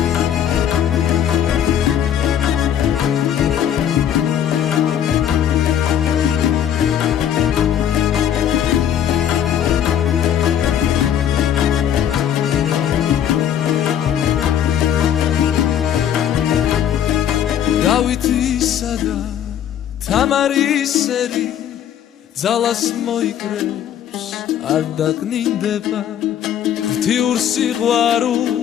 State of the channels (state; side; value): quieter; right; 9.8 dB